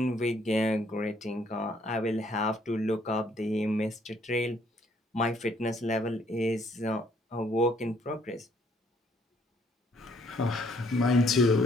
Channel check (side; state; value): both; normal; correlation 0.65